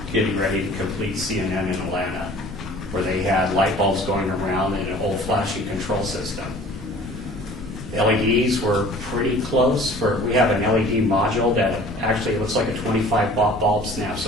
getting ready to complete CNN in Atlanta, where they had light bulbs going around in an old flashing control system. LEDs were pretty close. We have an LED module that actually looks like a 25-watt bulb snaps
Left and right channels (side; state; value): right; noise; rumble, 17 dB below the sound